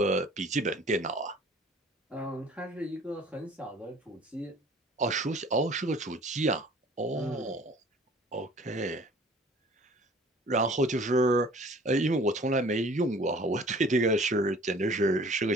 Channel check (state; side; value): normal; both; correlation 0.50